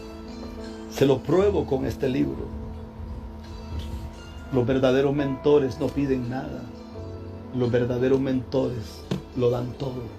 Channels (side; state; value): both; identical; correlation 1.00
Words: se lo pruebo con este libro. Los verdaderos mentores no piden nada. Los verdaderos mentores lo dan